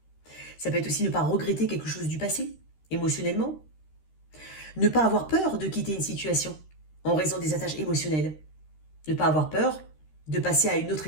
Ça peut être aussi ne pas regretter quelque chose du passé, émotionnellement. Ne pas avoir peur de quitter une situation en raison des attaches émotionnelles. Ne pas avoir peur de passer à une autre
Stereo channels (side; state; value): right; late; 13 ms